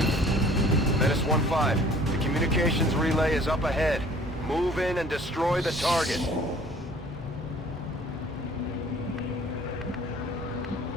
Menace 1-5, the communications relay is up ahead. Move in and destroy the target.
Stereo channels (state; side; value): normal; both; correlation 0.52